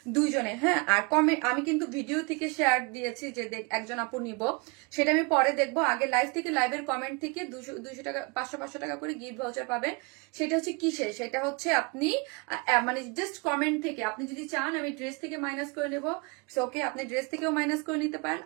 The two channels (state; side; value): quieter; left; 30.1 dB